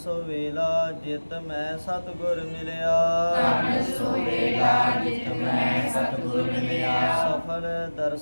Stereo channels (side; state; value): both; inverted; correlation -1.00